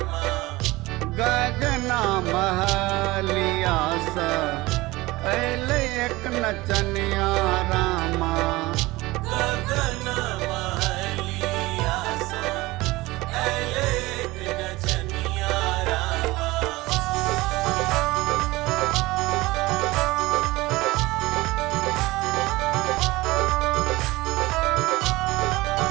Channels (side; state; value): left; quieter; 20.4 dB